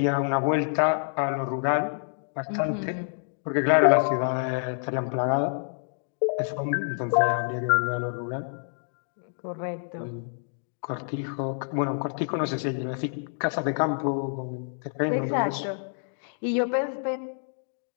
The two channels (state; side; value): silent; right; digital silence